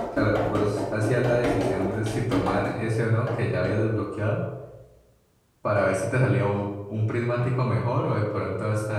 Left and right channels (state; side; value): identical; both; correlation 1.00